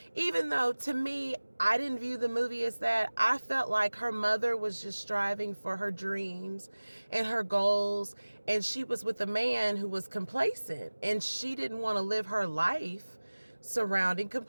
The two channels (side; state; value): both; inverted; correlation -1.00